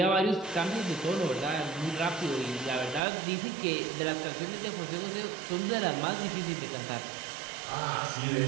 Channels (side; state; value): left; drops out; at 3.0 s